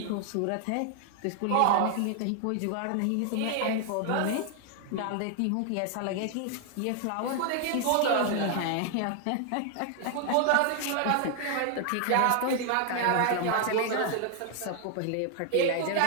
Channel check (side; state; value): both; different; correlation 0.00